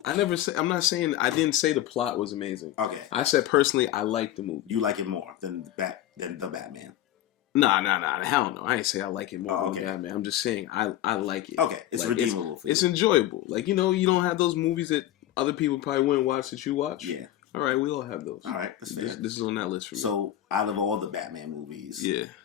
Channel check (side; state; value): right; quieter; 13.1 dB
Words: I didn't say the plot was amazing. Okay, I said personally, I like the movie. You like it more than the Batman. Nah. Hell no. I ain't say I like it more than Batman. I'm just saying I like it. Okay, it's like, redeemable for you. It's enjoyable. Like, you know, you don't have those movies that other people probably wouldn't watch that you watch. Yeah. All right, we all have those. All right, that's fair. This is on that list for me. So, out of all the Batman movies, yeah,